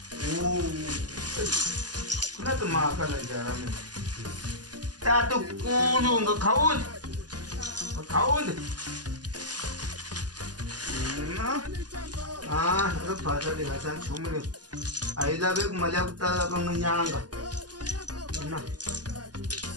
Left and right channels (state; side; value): late; left; 0.69 ms